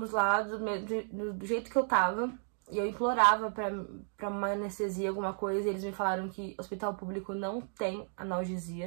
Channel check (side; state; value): left; silent; 56 dB below the other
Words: lá do jeito que eu tava. E eu implorava pra uma anestesia, alguma coisa. E eles me falaram que hospital público não tem